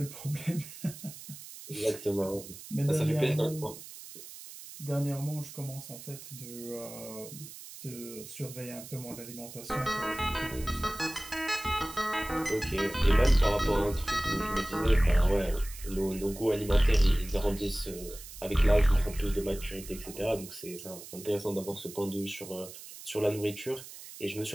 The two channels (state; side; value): noise; right; hiss, 14 dB below the sound